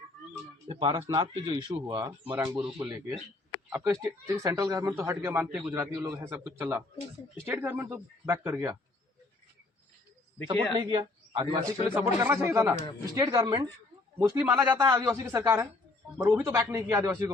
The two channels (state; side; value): quieter; right; 3.1 dB